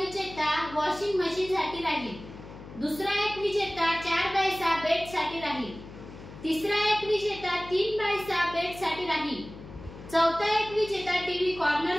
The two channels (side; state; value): left; noise; hum, 15 dB below the sound